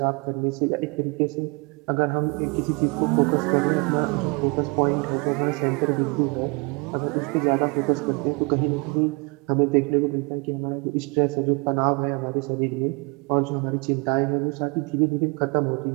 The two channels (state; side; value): quieter; left; 30.5 dB